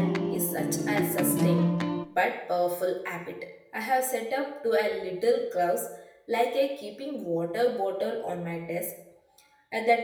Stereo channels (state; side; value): identical; both; correlation 1.00